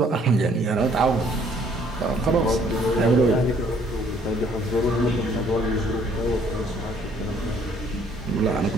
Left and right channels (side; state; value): both; normal; correlation 0.62